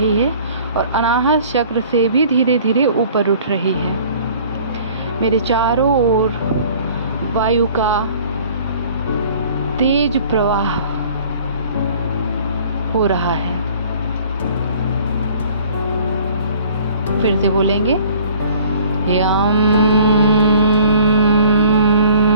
है और अनाहत चक्र से भी धीरे धीरे ऊपर उठ रही है। मेरे चारों ओर वायु का तेज प्रवाह हो रहा है। फिर से बोलेंगे, यम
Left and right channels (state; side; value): inverted; both; correlation -0.51